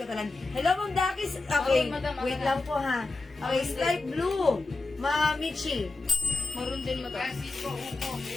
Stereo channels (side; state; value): right; quieter; 3.3 dB